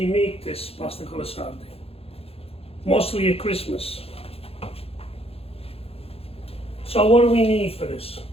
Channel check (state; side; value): late; right; 0.28 ms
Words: make this pasta con le sarde. Mostly at Christmas. So what do we need for this?